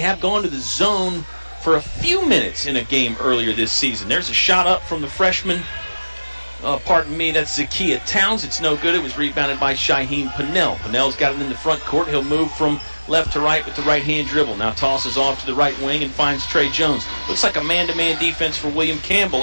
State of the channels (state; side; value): inverted; both; correlation -1.00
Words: gone to the zone for a few minutes in a game earlier this season. There's a shot up from the freshman. Pardon me, that's Zakiya Towns. It's no good. It was rebounded by Shaheen Pinnell. Pinnell's got it in the front court. He'll move from left to right with the right-hand dribble. Now tosses off to the right wing and finds Trey Jones. Looks like a man-to-man defense for William